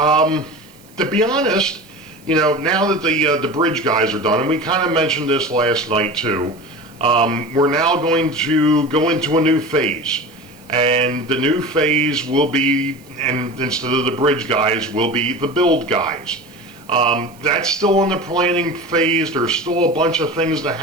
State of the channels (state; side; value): noise; right; hiss, 27 dB below the sound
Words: be honest, you know, now that the bridge guys are done, and we kind of mentioned this last night too, we're now going to go into a new phase. And the new phase will be, and instead of the bridge guys, will be the build guys. That's still in the planning phase. There's still a bunch of things that